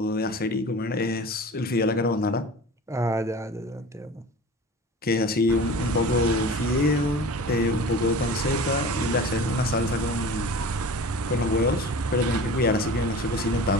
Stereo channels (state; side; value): normal; both; correlation 0.38